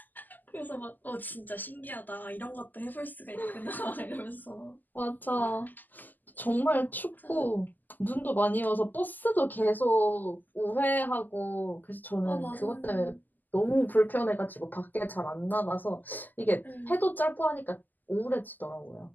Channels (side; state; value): right; late; 0.085 ms